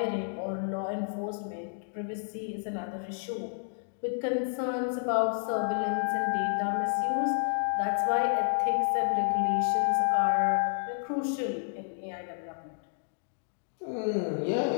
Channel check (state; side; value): silent; right; digital silence